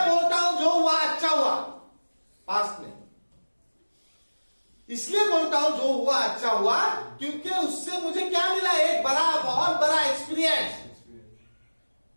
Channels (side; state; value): both; inverted; correlation -1.00